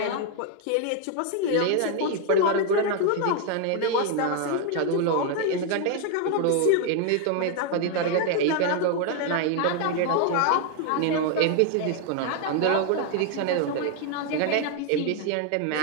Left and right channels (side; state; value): both; different; correlation 0.00